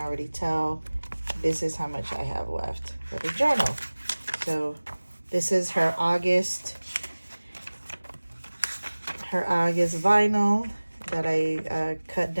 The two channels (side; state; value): both; inverted; correlation -1.00